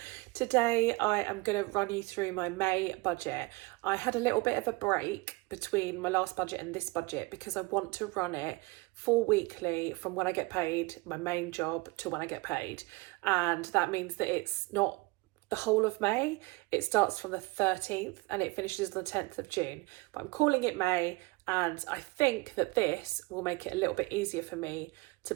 Today I am going to run you through my May budget. I had a little bit of a break between my last budget and this budget because I want to run it 4 weekly from when I get paid, my main job, to when I get paid. And that means that it's not the whole of May. It starts from the 13th and it finishes on the 10th of June. But I'm calling it May, and I think that this will make it a little bit easier for me to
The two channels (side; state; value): left; quieter; 24.9 dB